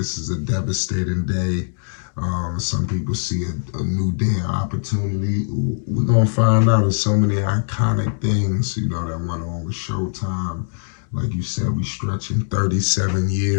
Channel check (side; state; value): right; silent; digital silence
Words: is a devastating day. Some people see a new day of opportunity. We're going to find out. There's so many iconic things, that went on with Showtime. Like you said, we stretching 37